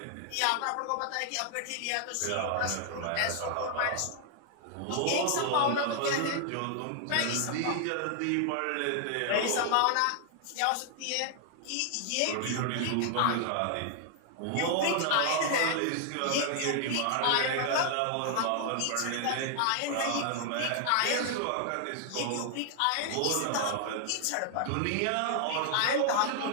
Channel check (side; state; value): both; different; correlation 0.00